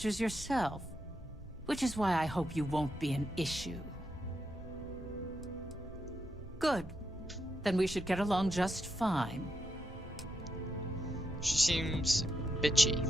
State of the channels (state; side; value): normal; both; correlation 0.84